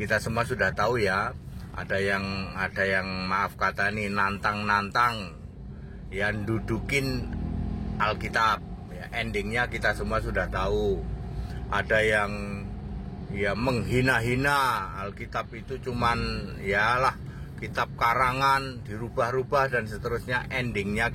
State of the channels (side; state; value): both; identical; correlation 1.00